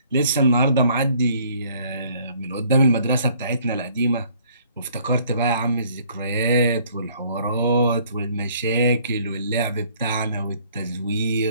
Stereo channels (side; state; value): both; inverted; correlation -0.60